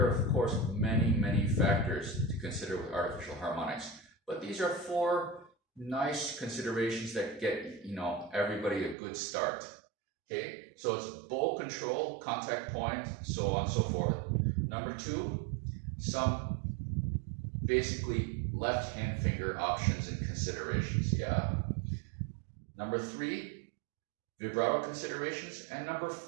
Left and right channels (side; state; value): left; drops out; at 9.0 s